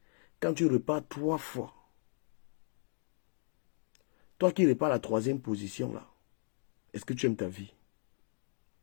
Quand tu repars 3 fois, toi qui repars à la troisième position là, est-ce que tu aimes ta vie?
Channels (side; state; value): right; silent; 54 dB below the other